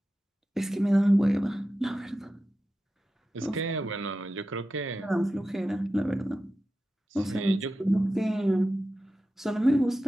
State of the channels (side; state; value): both; normal; correlation 0.92